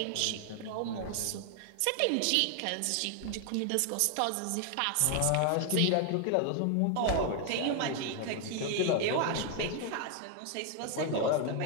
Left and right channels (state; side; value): different; both; correlation 0.00